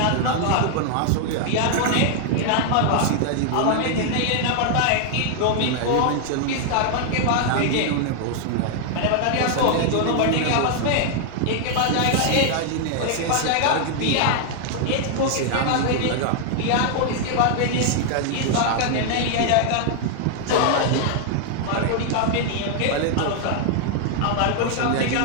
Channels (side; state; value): both; different; correlation 0.00